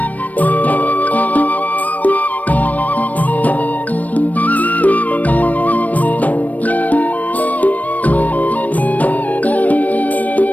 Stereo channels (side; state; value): right; late; 0.075 ms